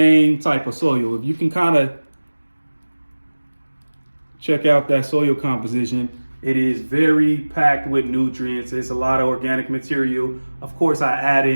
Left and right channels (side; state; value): both; inverted; correlation -1.00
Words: type of soil. If you can kind of check out that soil composition, it is very packed with nutrients. It's a lot of organic material. Of course, I add